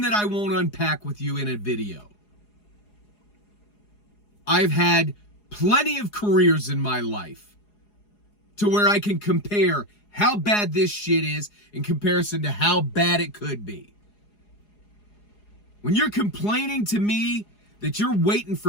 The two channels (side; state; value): right; late; 4.8 ms